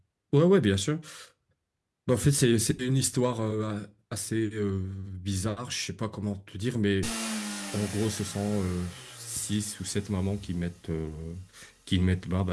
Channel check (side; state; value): both; identical; correlation 1.00